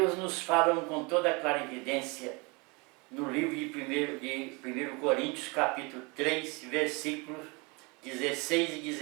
nos fala com toda a clarividência no livro de 1 Coríntios, capítulo 3, versículos 16 e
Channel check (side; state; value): left; quieter; 28.5 dB